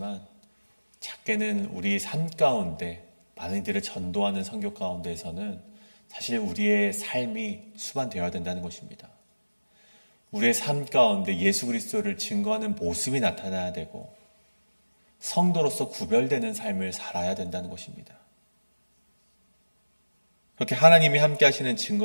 작게는 우리 삶 가운데 많은 이들을 전도하는 선교 가운데에서는 사실 우리의 삶이 수반되어야 된다는 것입니다. 우리의 삶 가운데 예수 그리스도를 증거하는 모습이 나타나야 되고 성도로서 구별되는 삶을 살아야 된다는 것입니다. 그렇게 하나님이 함께 하시는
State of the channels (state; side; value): inverted; both; correlation -1.00